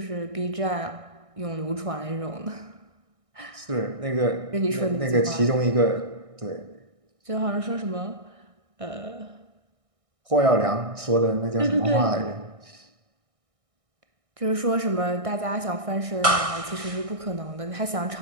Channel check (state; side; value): late; left; 1.6 ms